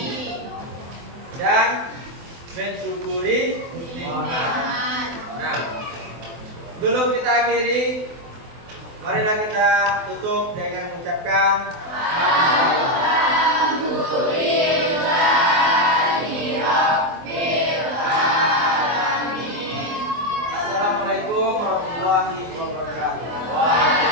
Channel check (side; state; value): left; late; 24 ms